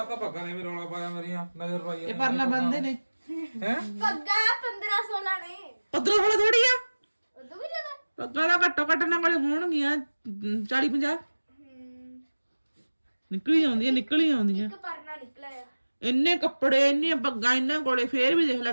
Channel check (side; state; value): both; inverted; correlation -1.00